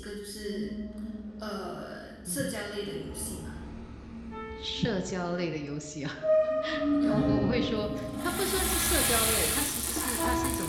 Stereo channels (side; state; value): both; identical; correlation 1.00